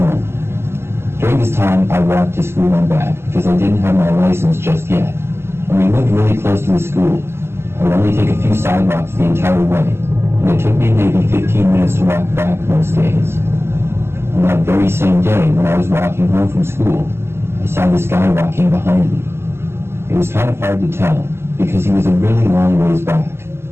During this time, I walked to school and back because I didn't have my license just yet. And we lived really close to the school. I would only take a few sidewalks the entire way, and it took me maybe 15 minutes to walk back most days. On that very same day, when I was walking home from school, I saw this guy walking behind me. It was kind of hard to tell because he was a really long ways back.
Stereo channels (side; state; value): left; late; 0.12 ms